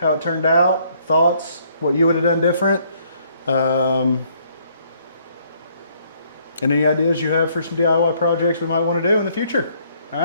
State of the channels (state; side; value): inverted; both; correlation -0.66